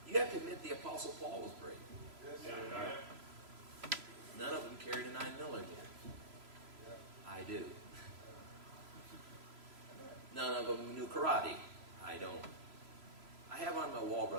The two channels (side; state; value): left; late; 3.0 ms